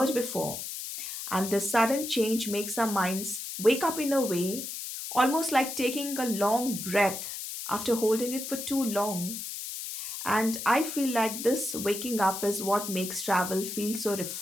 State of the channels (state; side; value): noise; left; hiss, 7 dB below the sound